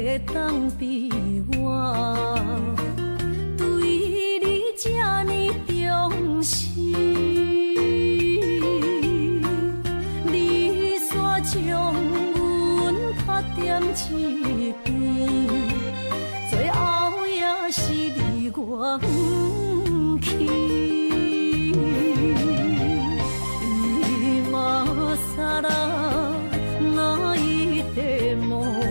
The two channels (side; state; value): both; inverted; correlation -1.00